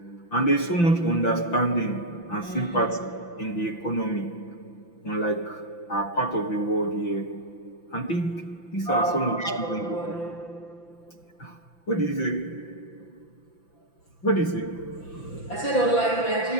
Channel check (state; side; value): late; right; 5.9 ms